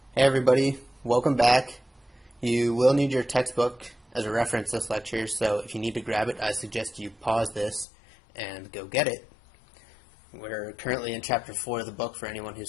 Hey everybody, welcome back. You will need your textbook as a reference this lecture, so if you need to grab it, I suggest you pause this and go get it. We're currently in chapter 4 of the book. For anyone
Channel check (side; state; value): right; drops out; at 7.9 s